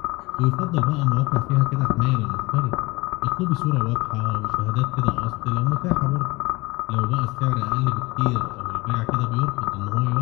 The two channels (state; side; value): quieter; right; 22.9 dB